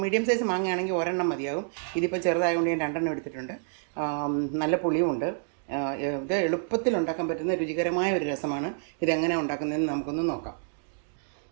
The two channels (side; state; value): left; silent; digital silence